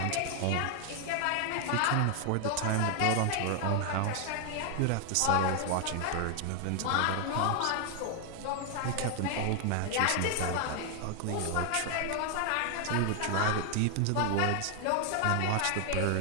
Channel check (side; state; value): both; different; correlation 0.00